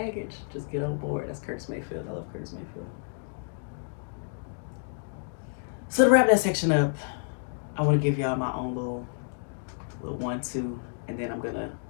Just get on board. That's Curtis Mayfield. I love Curtis Mayfield. So to wrap that section up, I want to give y'all my own little 1-2, and then I'm gonna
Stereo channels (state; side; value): silent; right; digital silence